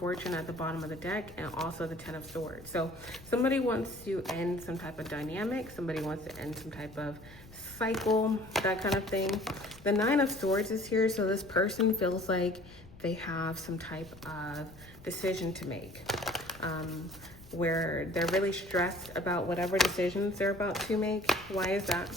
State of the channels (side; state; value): left; noise; rumble, 21 dB below the sound